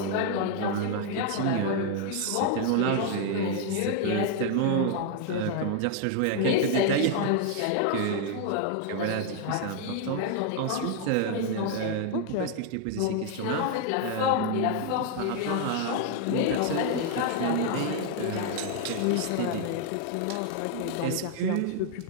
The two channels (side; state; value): both; different; correlation 0.00